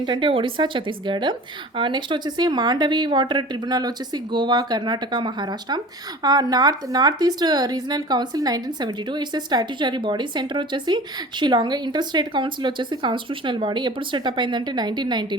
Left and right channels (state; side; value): normal; both; correlation 0.40